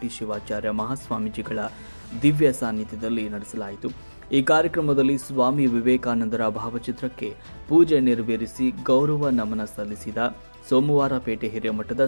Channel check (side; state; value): both; inverted; correlation -1.00